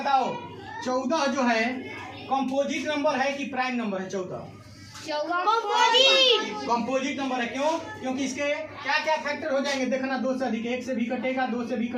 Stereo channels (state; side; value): identical; both; correlation 1.00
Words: 14 जो है कंपोजिट नंबर है कि प्राइम नंबर है? 14 कंपोजिट नंबर है। क्यों? क्योंकि इसके क्या क्या फैक्टर हो जाएंगे देखना, 2 से अधिक, 1 से भी कटेगा, 2 से भी